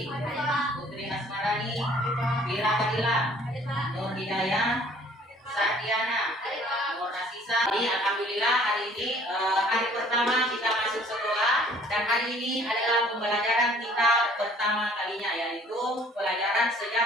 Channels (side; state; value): both; normal; correlation 0.55